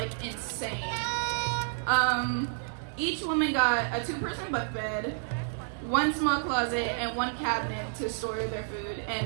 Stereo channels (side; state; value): left; silent; digital silence